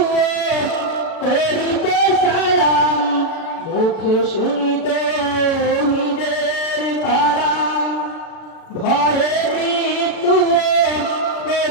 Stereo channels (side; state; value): right; late; 36 ms